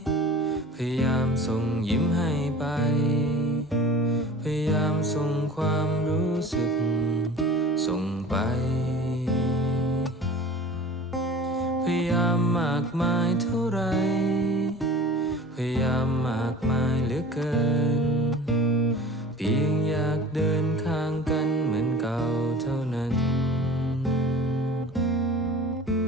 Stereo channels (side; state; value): both; normal; correlation 0.41